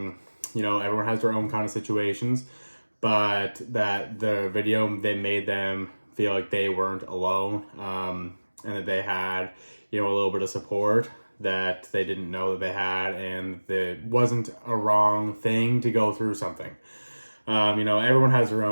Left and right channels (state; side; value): inverted; both; correlation -1.00